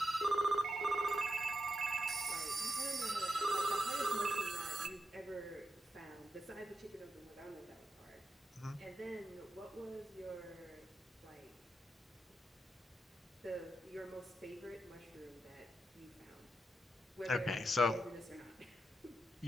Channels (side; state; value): both; normal; correlation 0.86